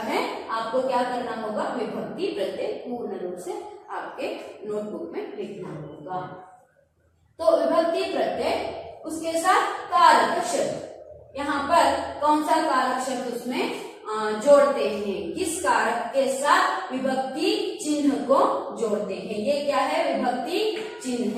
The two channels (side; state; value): both; identical; correlation 1.00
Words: है, आपको क्या करना होगा, विभक्ति प्रत्यय पूर्ण रूप से आपके नोटबुक में लिखना होगा. तो विभक्ति प्रत्यय, उसके साथ कारक शब्द, यहाँ पर कौन सा कारक शब्द उसमें जोड़ते हैं, किस कारक के साथ विभक्ति चिन्ह को जोड़ते हैं. ये क्या है, विभक्ति